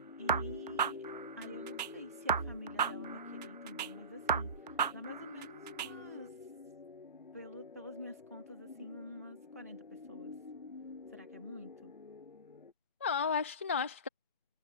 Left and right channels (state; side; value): inverted; both; correlation -0.31